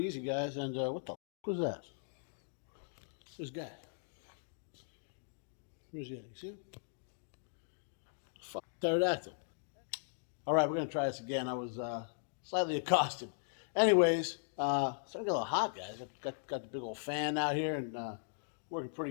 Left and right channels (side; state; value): right; silent; digital silence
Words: easy, guys. And what the was that? This guy. Where's he at? You see him? Fuck, pterodactyl. All right, we're gonna try this again. I was slightly accosted. Anyways, starting to get a little hot, guys. Got the big old fan out here and working